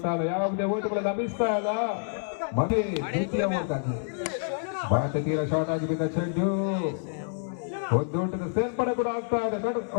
ಇಲ್ಲ. ಯಾವುದೇ ಓಟುಗಳು ಲಭಿಸ್ತಾ ಇಲ್ಲ. ಮತ್ತೆ ದ್ವಿತೀಯ ಓಟಾಗಿ ಮತ್ತೆ ತೀರ ಶಾರ್ಟ್ ಆಗಿ ಬಿದ್ದ ಚೆಂಡು ಒಂದು ಓಟದ ಸೇರ್ಪಡೆ ಕೂಡ ಆಗ್ತಾ ಇದೆ.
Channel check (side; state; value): right; silent; 59 dB below the other